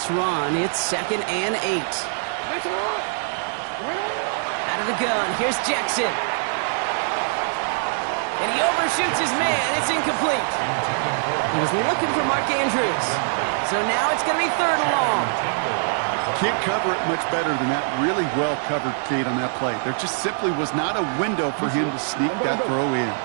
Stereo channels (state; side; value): silent; left; digital silence